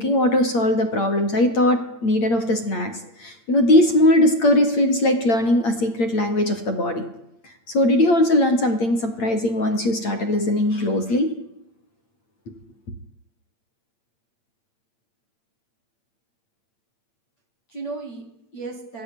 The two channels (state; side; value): late; right; 8.7 ms